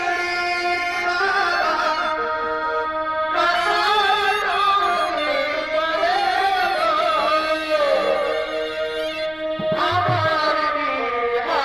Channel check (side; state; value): left; noise; rumble, 24 dB below the sound